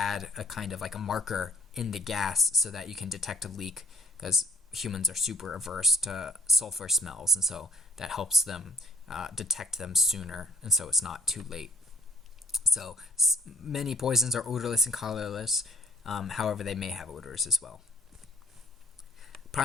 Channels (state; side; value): normal; both; correlation 0.58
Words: a kind of like a marker in the gas so that you can detect a leak, because humans are super averse to sulfur smells, and so that helps them detect them sooner, and so it's not too late. So many poisons are odorless and colorless. However, they may have odors as well.